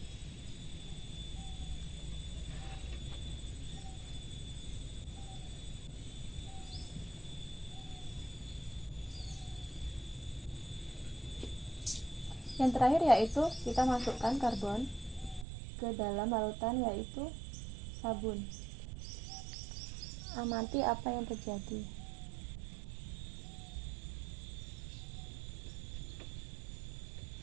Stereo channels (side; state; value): left; drops out; at 15.5 s